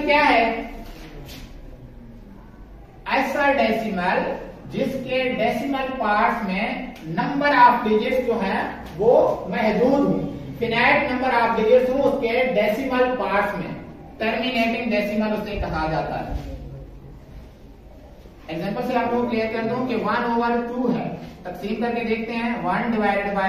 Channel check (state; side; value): identical; both; correlation 1.00